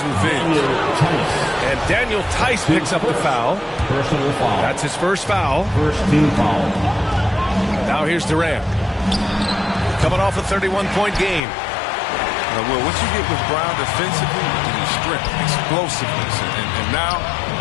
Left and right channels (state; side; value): drops out; right; at 11.4 s